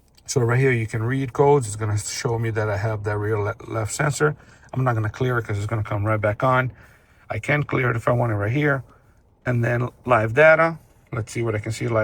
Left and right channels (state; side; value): identical; both; correlation 1.00